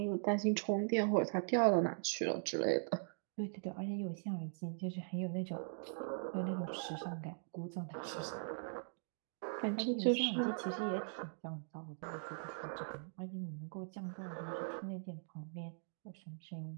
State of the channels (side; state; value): left; silent; digital silence